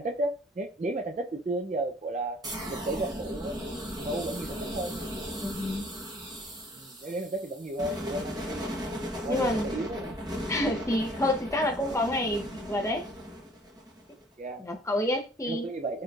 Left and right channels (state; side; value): normal; both; correlation 0.55